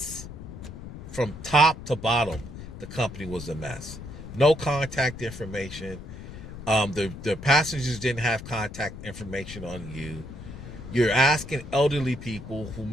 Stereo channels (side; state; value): left; noise; rumble, 12 dB below the sound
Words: from top to bottom. The company was a mess. No contact information. The passengers didn't have contact information on you. You're asking elderly people, who